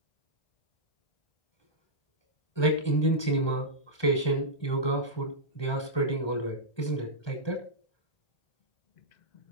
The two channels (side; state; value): right; late; 1.2 ms